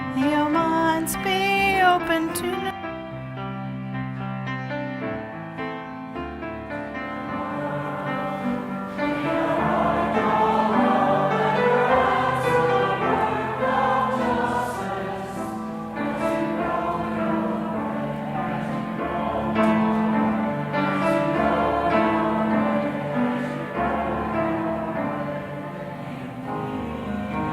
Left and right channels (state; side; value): identical; both; correlation 1.00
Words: Your minds be open to